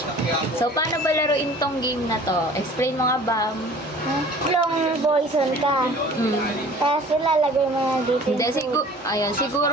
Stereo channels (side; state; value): both; normal; correlation 0.47